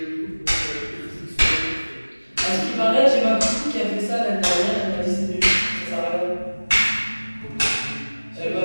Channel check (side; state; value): both; inverted; correlation -1.00